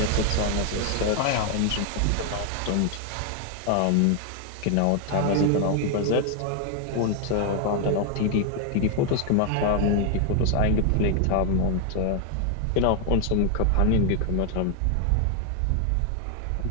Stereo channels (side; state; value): both; different; correlation 0.00